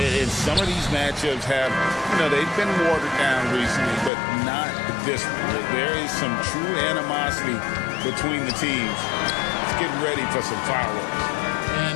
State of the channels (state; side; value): drops out; right; at 4.1 s